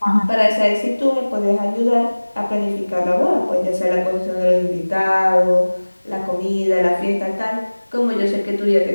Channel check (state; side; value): inverted; both; correlation -1.00